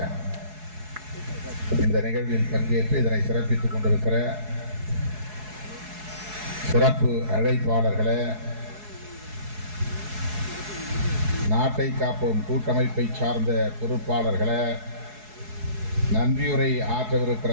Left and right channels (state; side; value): late; left; 4.7 ms